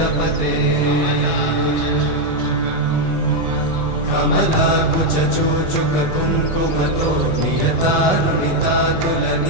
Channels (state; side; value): late; right; 7.6 ms